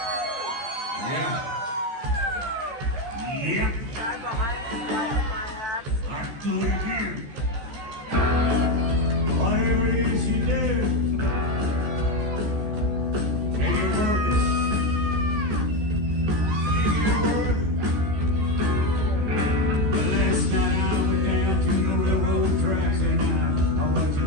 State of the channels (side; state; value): left; late; 14 ms